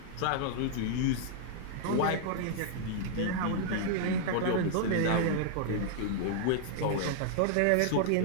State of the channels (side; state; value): both; different; correlation -0.01